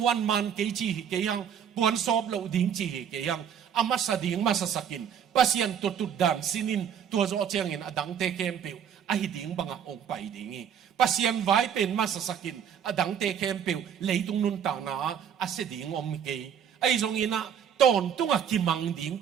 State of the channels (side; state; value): left; quieter; 8.4 dB